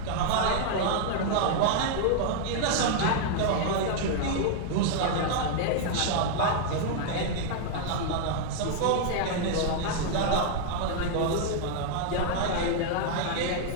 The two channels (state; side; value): different; both; correlation 0.00